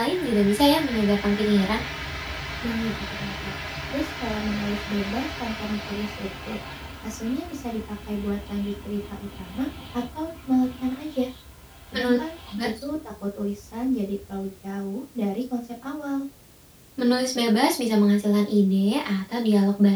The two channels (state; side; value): identical; both; correlation 1.00